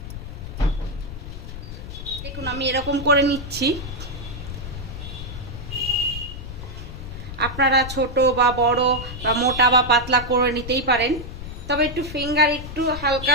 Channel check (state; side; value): noise; left; rumble, 9 dB below the sound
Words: দেখুন আমি এরকম করে নিচ্ছি। আপনারা ছোট বা বড় বা মোটা বা পাতলা করে নিতেই পারেন, তবে একটু ফিঙ্গার একটু